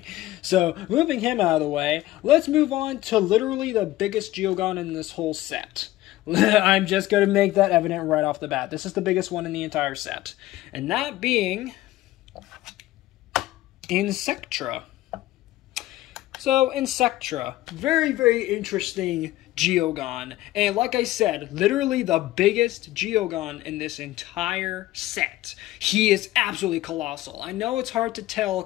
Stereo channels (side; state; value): right; quieter; 16.1 dB